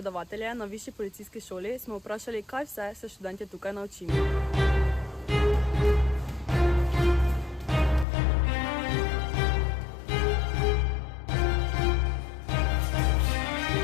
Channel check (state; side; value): drops out; right; at 8.1 s